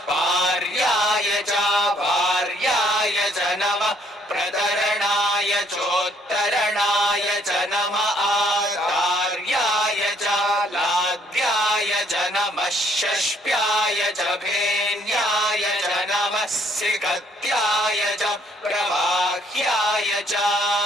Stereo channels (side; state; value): both; normal; correlation 0.66